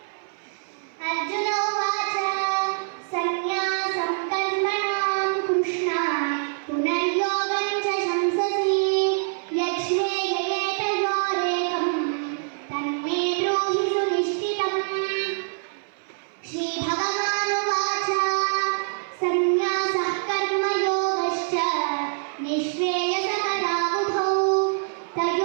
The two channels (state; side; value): silent; left; 58 dB below the other